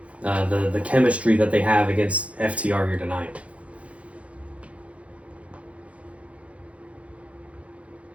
the chemistry that they have against FTR here tonight?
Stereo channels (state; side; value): late; left; 0.063 ms